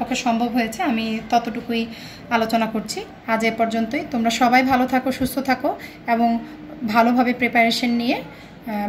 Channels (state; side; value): identical; both; correlation 1.00